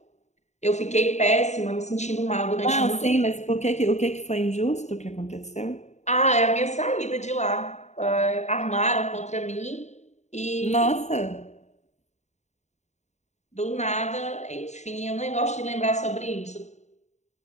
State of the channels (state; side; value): late; right; 0.33 ms